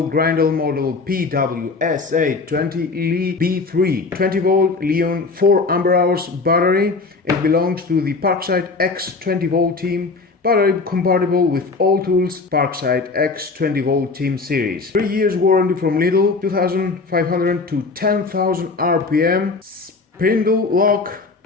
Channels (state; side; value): quieter; right; 4.0 dB